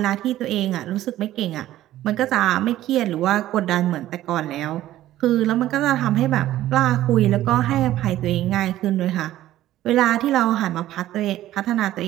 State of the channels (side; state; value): left; quieter; 14.0 dB